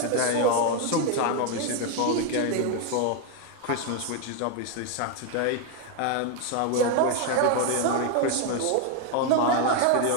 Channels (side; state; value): both; different; correlation 0.01